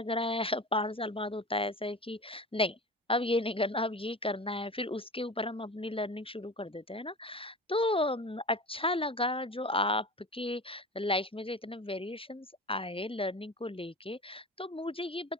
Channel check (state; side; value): normal; both; correlation 0.33